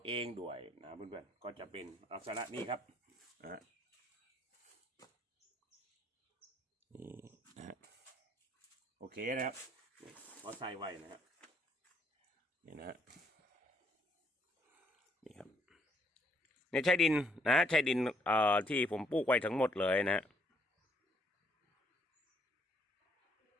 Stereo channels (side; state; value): both; normal; correlation 0.69